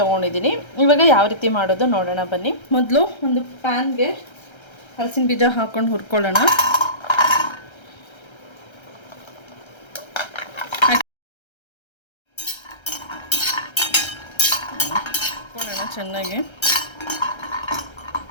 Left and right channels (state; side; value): late; right; 1.3 ms